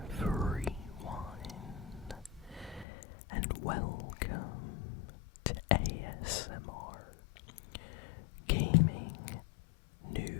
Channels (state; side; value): drops out; right; at 2.9 s